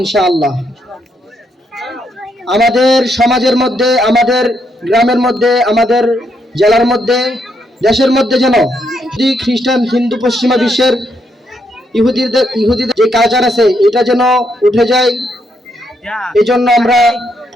ইনশাআল্লাহ। আমাদের সমাজের মধ্যে, আমাদের গ্রামের মধ্যে, আমাদের জেলার মধ্যে, দেশের মধ্যে যেন খ্রিস্টান, হিন্দু, পশ্চিমা বিশ্বের ইহুদিদের যে কালচার আছে এটা যেন উঠে যায়। এই জন্য আমরা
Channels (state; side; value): normal; both; correlation 0.77